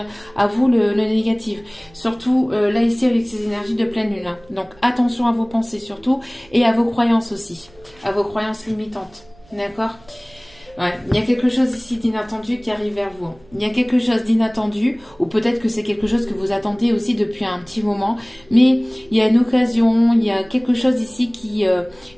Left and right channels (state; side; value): noise; right; hum, 28 dB below the sound